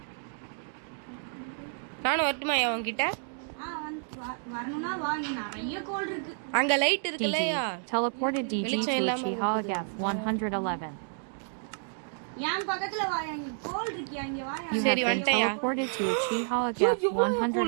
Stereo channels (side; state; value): left; silent; 58 dB below the other